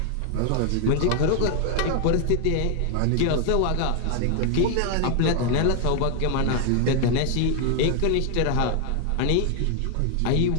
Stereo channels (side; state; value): both; different; correlation 0.00